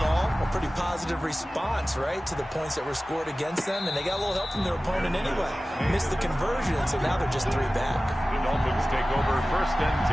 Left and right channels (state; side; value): normal; both; correlation 0.96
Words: all, a pretty positive response, right, to the points that were scored against them. And they got a little help from their opponent anyway. Missed the conversion, so now they're just 3 back. The Dolphins take over 1st and